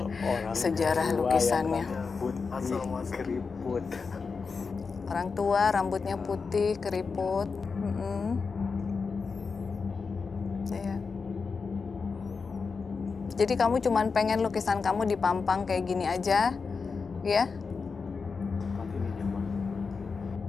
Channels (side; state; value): right; quieter; 4.9 dB